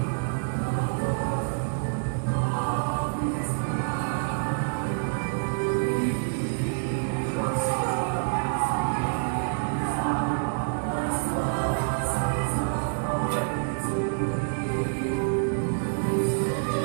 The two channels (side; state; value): left; silent; 60 dB below the other